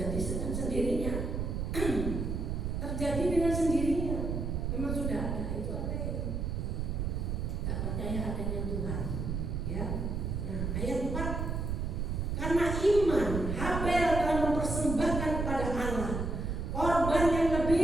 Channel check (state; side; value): noise; right; rumble, 2 dB below the sound